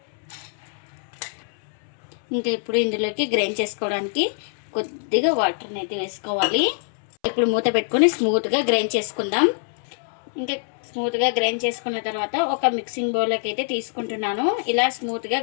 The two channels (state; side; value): silent; right; 63 dB below the other